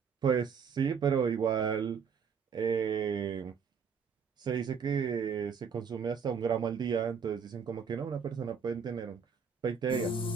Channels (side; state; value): left; quieter; 6.3 dB